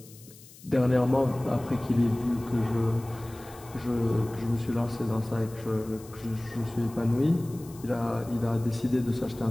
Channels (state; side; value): noise; left; hiss, 21 dB below the sound